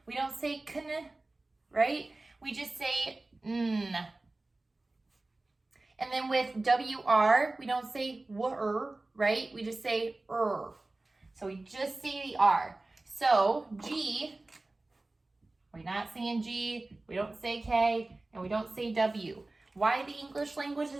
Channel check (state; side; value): quieter; left; 3.0 dB